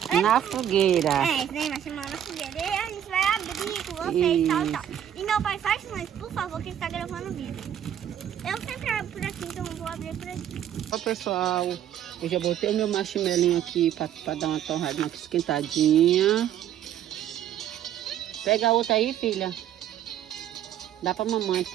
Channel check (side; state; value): left; quieter; 10.4 dB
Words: na fogueira. É, esse daí marshmallow na fogueira. E a gente vai abrir com vocês, tal. E meu pai faz mais, por favor, que ele está gravando o vídeo. Eu sempre abro por aqui, então eu vou abrir por aqui. Ó pessoal, eu já botei o meu marshmallow aqui para dar uma torradinha aqui esquentadinha. Pega a outra aí, filha. Dá pra mamãe,